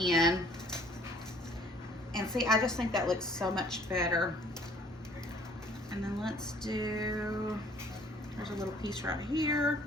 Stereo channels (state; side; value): normal; both; correlation 0.56